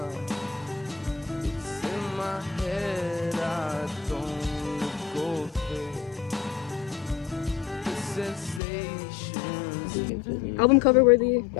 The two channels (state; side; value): drops out; right; at 8.6 s